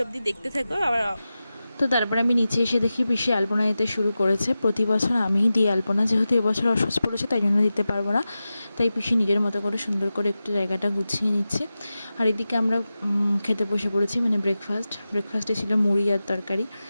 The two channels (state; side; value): inverted; both; correlation -0.94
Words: অবধি দেখতে থাকো। আবার তো তারপরে আমি নিচে এসে দেখি পিসি আলপনা দিতে শুরু করেছে। প্রতি বছর আমিই দিই আলপনা, যেহেতু এবছর অসুস্থ পড়েছে তাই জন্য দিতে পারবো না, তাই পিসি নিজের মতো করে সুন্দর করে একটু জায়গাটা গুছিয়ে নিচ্ছে। আর এদিকে আমরা খেতে বসে পড়েছি, মানে ব্রেকফাস্টে ছিল মুড়ি আর তরকারি।